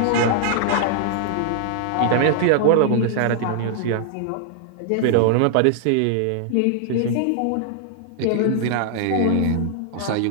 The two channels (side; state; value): both; different; correlation 0.00